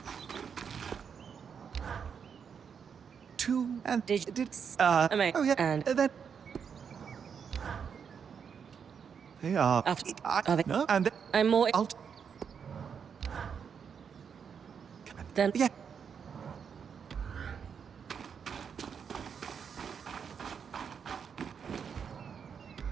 Two and Did oh yeah, and then they are. After- I, are they- no, and I'm more... I'll Then... yeah.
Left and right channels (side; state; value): left; quieter; 6.9 dB